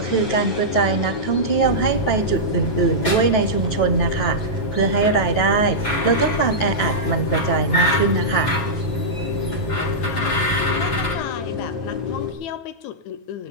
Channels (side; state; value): right; late; 9.2 ms